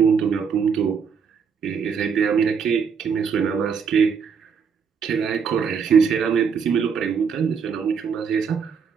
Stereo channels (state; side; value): quieter; left; 6.4 dB